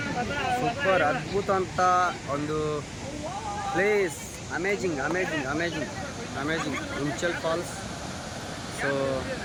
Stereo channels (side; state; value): both; identical; correlation 1.00